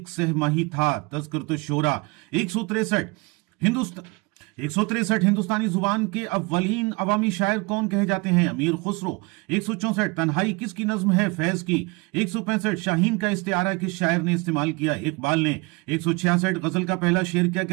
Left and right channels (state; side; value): quieter; left; 27.3 dB